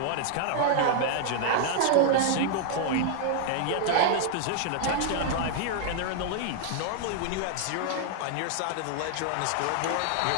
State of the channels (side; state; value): both; different; correlation 0.00